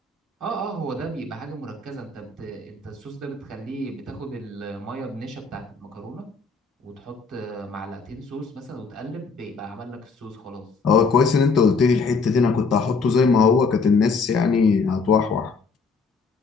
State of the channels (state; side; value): quieter; right; 4.6 dB